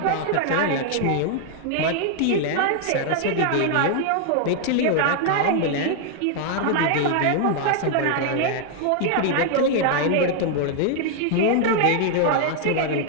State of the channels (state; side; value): different; both; correlation 0.00